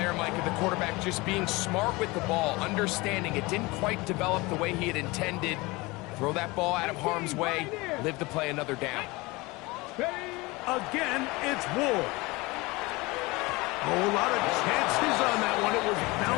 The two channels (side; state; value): right; quieter; 23.2 dB